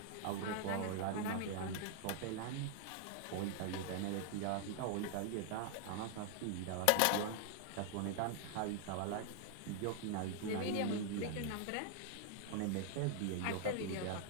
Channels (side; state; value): both; different; correlation 0.00